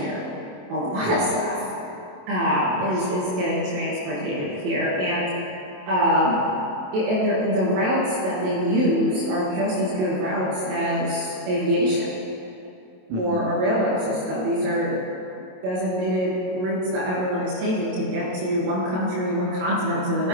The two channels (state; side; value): late; left; 27 ms